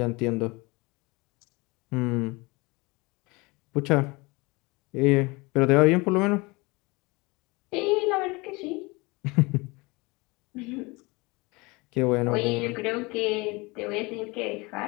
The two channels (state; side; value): quieter; right; 25.3 dB